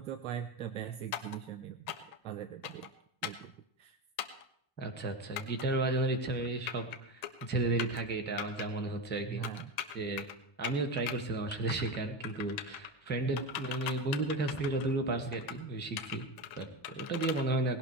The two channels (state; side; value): late; right; 1.9 ms